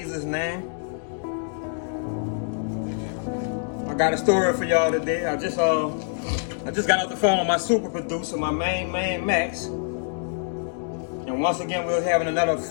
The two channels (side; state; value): right; silent; digital silence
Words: name. I got a story for y'all today. I just got off the phone with my super producer, my main man Max. And once again, we were having another